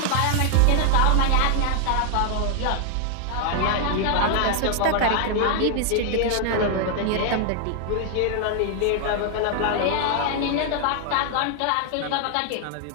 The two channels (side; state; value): both; different; correlation 0.00